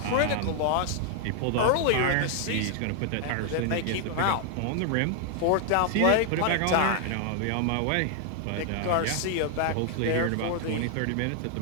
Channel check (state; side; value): different; both; correlation 0.00